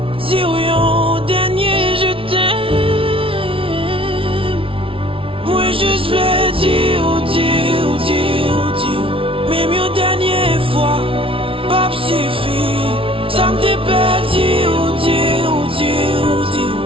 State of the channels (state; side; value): late; left; 0.26 ms